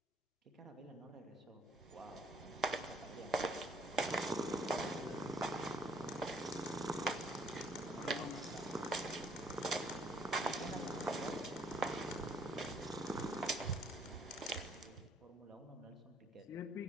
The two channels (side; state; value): both; normal; correlation 0.63